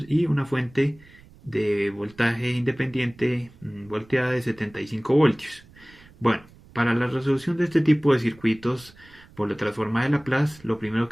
y una fuente de voltaje independiente volteada de 75 voltios. Bueno, para la resolución de este tipo de circuitos por la transformada de Laplace, lo primero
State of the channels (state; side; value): noise; right; rumble, 25 dB below the sound